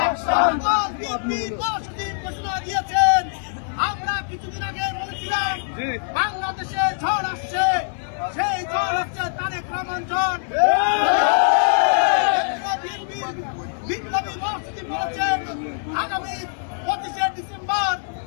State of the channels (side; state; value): right; silent; 58 dB below the other